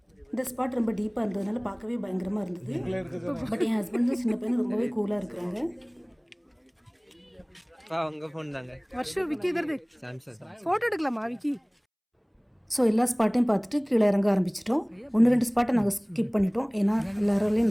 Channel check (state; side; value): identical; both; correlation 1.00